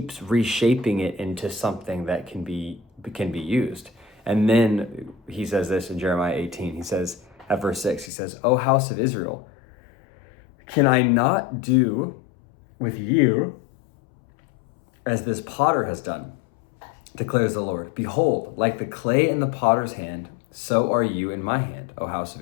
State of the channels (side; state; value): right; drops out; at 8.1 s